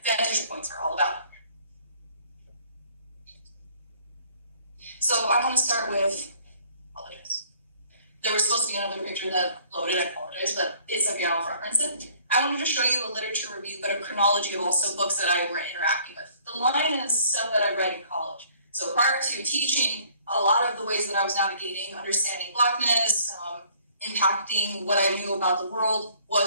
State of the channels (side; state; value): both; inverted; correlation -0.58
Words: vantage points are all about. So I want to start with, apologize. There was supposed to be another picture that loaded, I apologize, but it's okay, I'll reference it. I wanted to show you a literature review, but a chronology of also books that I were interacting with. The line is stuff that I read in college. So prior to teaching, a lot of the ways that I was navigating, understanding Blackness, impacting what I knew about the world